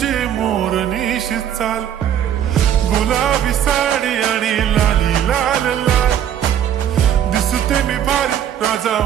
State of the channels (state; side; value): quieter; left; 9.9 dB